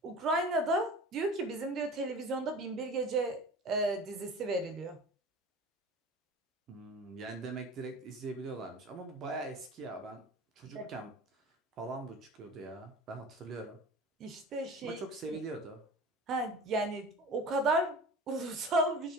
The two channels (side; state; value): both; normal; correlation 0.37